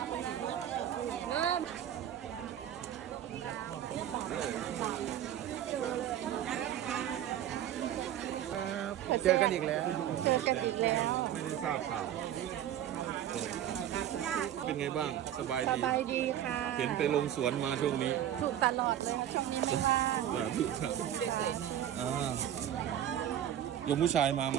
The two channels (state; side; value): quieter; left; 11.1 dB